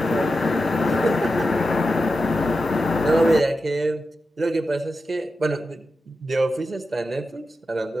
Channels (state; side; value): normal; both; correlation 0.90